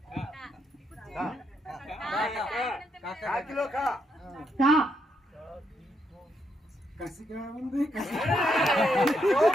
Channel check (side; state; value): both; normal; correlation 0.77